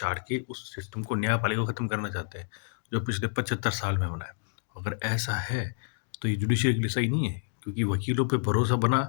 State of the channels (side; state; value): right; silent; digital silence